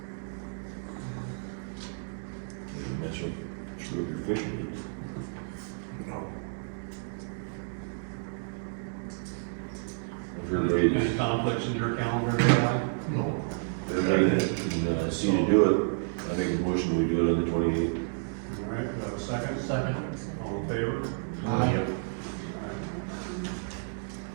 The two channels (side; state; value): left; silent; digital silence